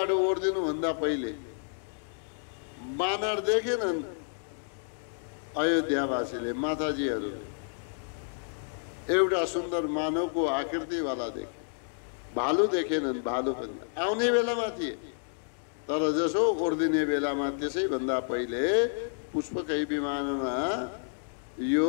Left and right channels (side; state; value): right; silent; digital silence